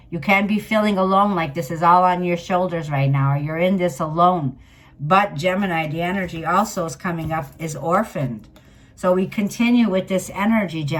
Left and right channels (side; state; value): both; identical; correlation 1.00